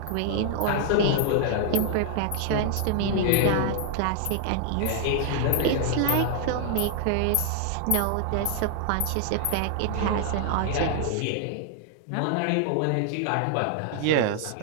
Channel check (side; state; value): both; different; correlation 0.00